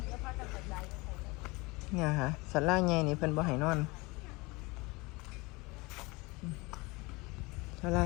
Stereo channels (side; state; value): right; quieter; 24.8 dB